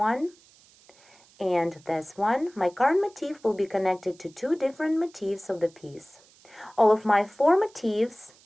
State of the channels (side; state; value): right; noise; hiss, 28 dB below the sound